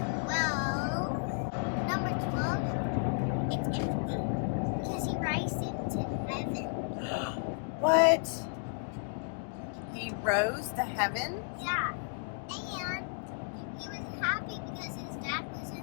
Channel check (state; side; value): silent; right; digital silence